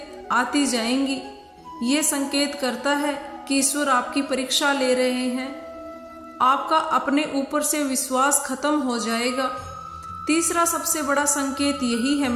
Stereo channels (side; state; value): both; identical; correlation 1.00